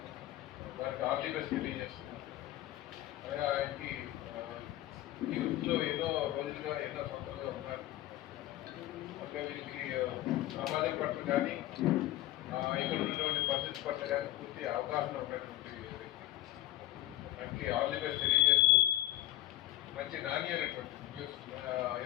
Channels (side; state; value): right; quieter; 15.1 dB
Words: దానికి ఆల్ ది బెస్ట్ తెలియజేస్తున్నాను. అలాగే ఆయనకి యూత్లో ఎన్నో రోజులుగా ఎన్నో సంవత్సరాలుగా ఉన్నారు. అంటే వీళ్ళకి సమాజం పట్ల కానీ ఇక్కడ ఉన్నటువంటి పరిస్థితి పట్ల కానీ పూర్తి అవగాహన ఉన్నటువంటి వ్యక్తి. ఆయనకి ఆల్ ది బెస్ట్ తెలియజేస్తూ మంచి నాణ్యమైనటువంటి న్యూస్